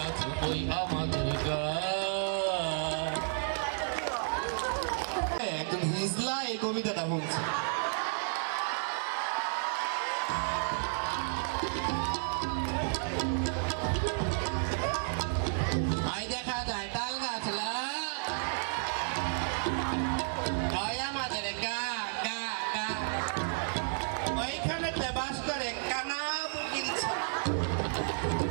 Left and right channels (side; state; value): left; silent; 56 dB below the other